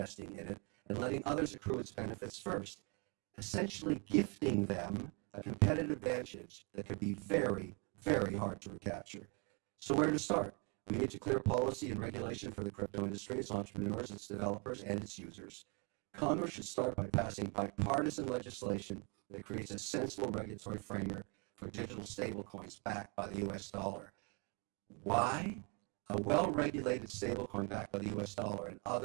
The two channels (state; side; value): quieter; left; 34.3 dB